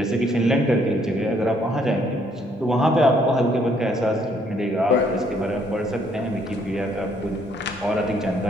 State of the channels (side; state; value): both; normal; correlation 0.67